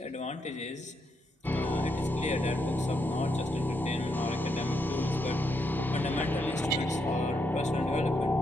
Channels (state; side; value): normal; both; correlation 0.79